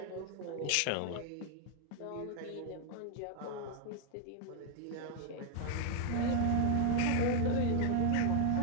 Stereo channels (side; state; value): both; different; correlation 0.00